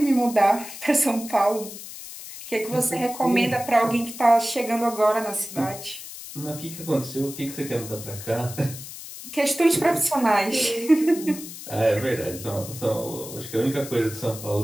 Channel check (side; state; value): left; noise; hiss, 12 dB below the sound